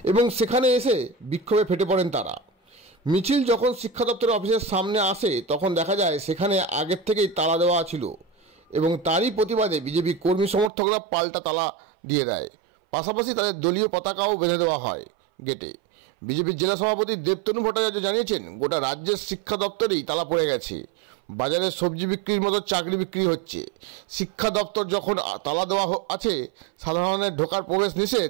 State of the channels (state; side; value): drops out; left; at 10.7 s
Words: এবং সেখানে এসে বিক্ষোভে ফেটে পড়েন তারা। মিছিল যখন শিক্ষা দপ্তরের অফিসের সামনে আসে তখন দেখা যায় সেখানে আগের থেকেই তালা দেওয়া ছিল এবং তারই প্রতিবাদে বিজেপি কর্মী সমর্থকরা পাল্টা তালা দিয়ে দেয়। পাশাপাশি তাদের দলীয় পতাকাও বেঁধে দেওয়া হয় গেটে। বিজেপির জেলা সভাপতি দেবতনু ভট্টাচার্য জানিয়েছেন, গোটা রাজ্যের শিক্ষা দপ্তরেই তালা পড়ে গেছে। বাজারে সবজি বিক্রির মতো চাকরি বিক্রি হচ্ছে। শিক্ষা দপ্তর যখন তালা দেওয়া আছে, সাধারণের ঢোকার প্রবেশ